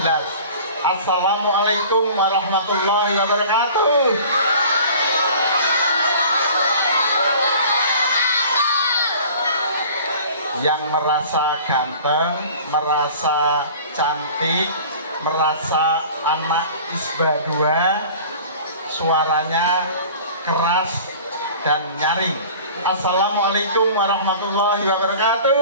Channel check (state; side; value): inverted; both; correlation -0.44